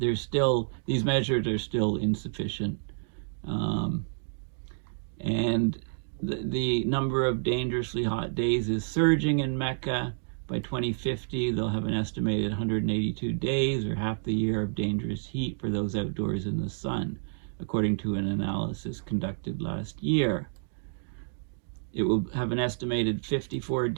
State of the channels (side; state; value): left; silent; digital silence